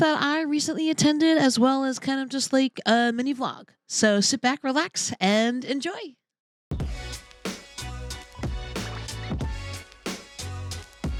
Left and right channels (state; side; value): identical; both; correlation 1.00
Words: I recently attended, as well as kind of just like a mini vlog. So sit back, relax, and enjoy.